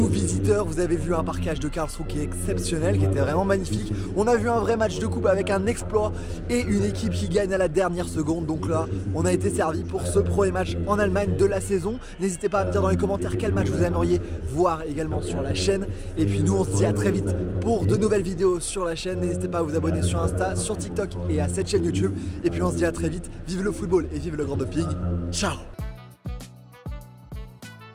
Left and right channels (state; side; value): identical; both; correlation 1.00